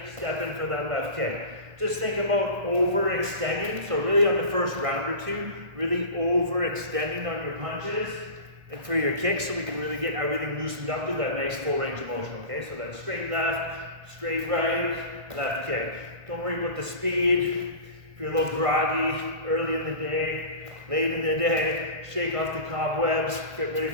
step in for that left kick. Just think about overextending. So really on the first round or two, really overextending on your punches and for your kicks, so we can really get everything loosened up to that nice full range of motion, okay? So that straight left, straight right, left kick. Don't worry about the speed. If you're a little groggy early in the day, late in the day, shake off the cobwebs, get ready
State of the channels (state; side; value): late; left; 1.5 ms